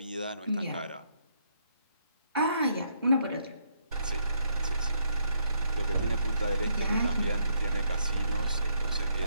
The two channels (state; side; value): inverted; both; correlation -0.73